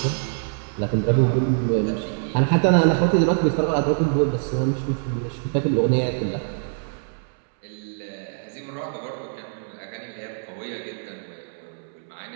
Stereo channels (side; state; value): left; silent; 62 dB below the other